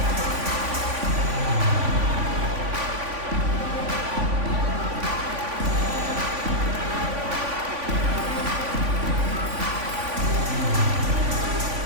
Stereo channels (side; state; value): left; late; 3.5 ms